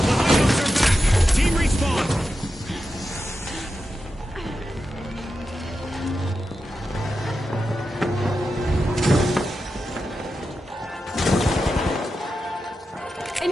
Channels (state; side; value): normal; both; correlation 0.90